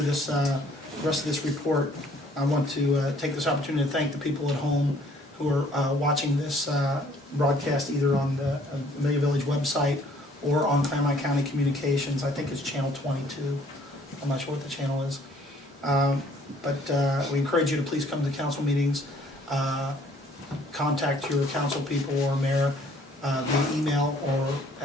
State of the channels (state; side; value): normal; both; correlation 0.60